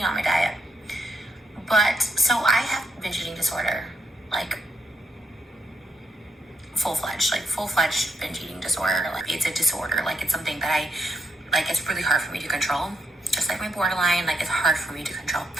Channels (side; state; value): both; normal; correlation 0.78